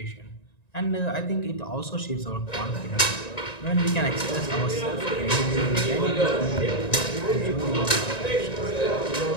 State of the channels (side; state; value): right; late; 1.9 ms